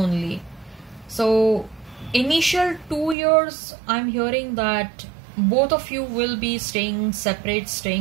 So initial 2 years, I'm hearing that both of you will be staying separate,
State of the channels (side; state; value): left; drops out; at 3.2 s